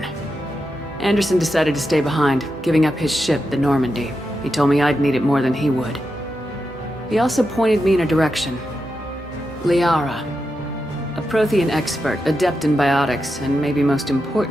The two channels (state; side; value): normal; both; correlation 0.87